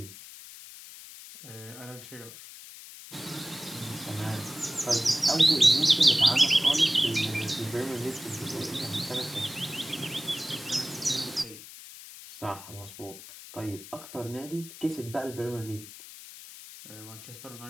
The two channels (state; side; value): noise; left; hiss, 15 dB below the sound